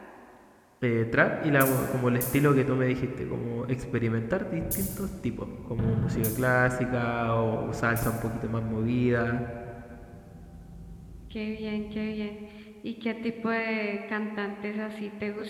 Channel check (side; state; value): both; identical; correlation 1.00